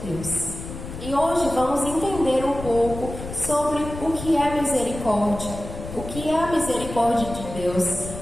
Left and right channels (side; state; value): left; noise; rumble, 10 dB below the sound